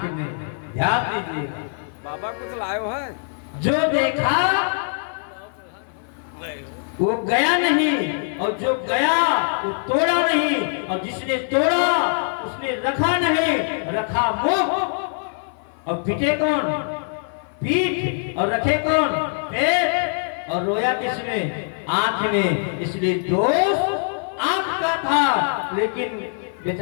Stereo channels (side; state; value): right; silent; 57 dB below the other